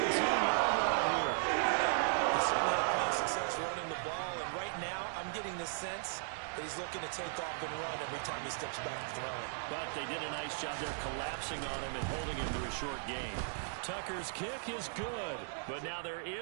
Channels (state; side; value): silent; left; digital silence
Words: line here. They certainly have had success running the ball, and right now I'm getting the sense that he's looking to take off and run every time he steps back to throw it. But they did a nice job there collapsing on him and holding him to a short gain. Tucker's kick is good, but now there